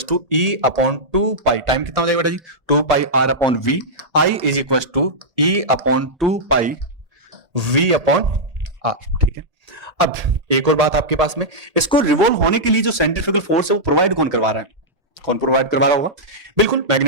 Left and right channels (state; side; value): late; left; 1.0 ms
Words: to E/2 pi, time कितना हो जाएगा बेटा जी 2 pi R/V, I is equal to E/2 pi V/R, ठीक है। अब एक और बात आपके पास में, इसको रिवॉल्व होने के लिए जो सेंट्रीफ्यूगल फोर्स है वो प्रोवाइड कौन करवा रहा है? कौन प्रोवाइड करवा रहा होगा? बिल्कुल